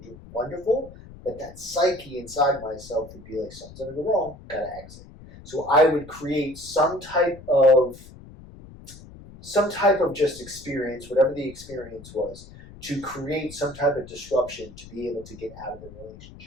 wonderful, but that psyche inside myself would be like, something's going to go wrong, gotta exit. So I would create some type of just experience, whatever the experience was, to create some type of disruption to be able to get out of the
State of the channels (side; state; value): left; noise; rumble, 18 dB below the sound